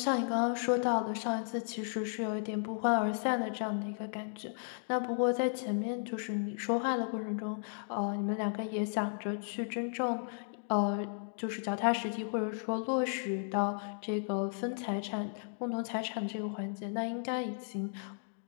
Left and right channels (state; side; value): silent; right; digital silence